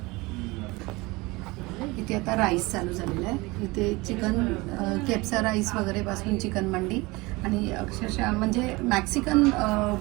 इथे आता राईस चालू झालेला आहे. इथे चिकन केप्सा राईस वगैरे पासून चिकन मंडी आणि अक्षरशः म्हणजे मॅक्सिकन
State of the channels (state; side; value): quieter; left; 23.1 dB